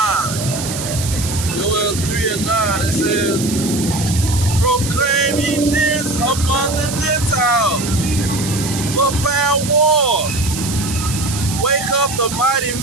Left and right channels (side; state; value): right; noise; hiss, 7 dB below the sound